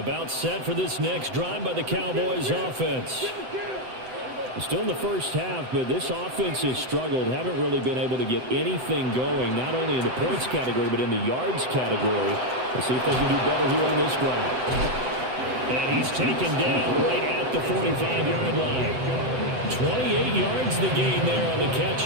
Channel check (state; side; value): late; left; 7.9 ms